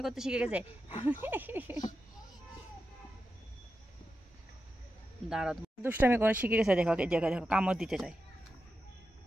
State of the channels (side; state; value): both; normal; correlation 0.90